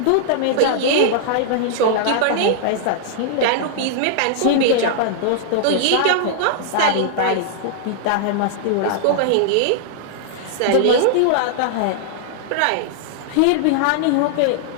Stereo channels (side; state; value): both; different; correlation -0.01